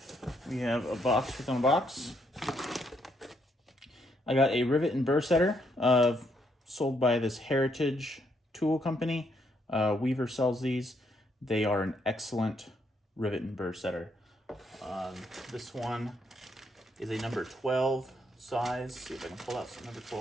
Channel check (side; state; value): both; normal; correlation 0.74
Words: We have a box within a box. I got a rivet and burr setter sold by this Heritage tool company. Weaver sells these. They are an excellent rivet and burr setter. This one is a number 12 size. See if I can pull out some number